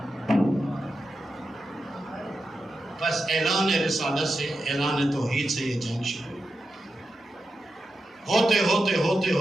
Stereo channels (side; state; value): both; normal; correlation 0.89